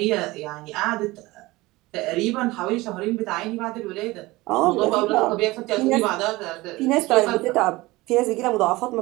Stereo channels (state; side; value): quieter; left; 20.4 dB